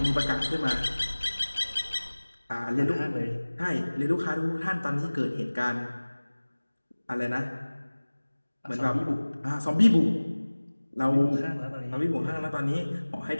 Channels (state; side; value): inverted; both; correlation -1.00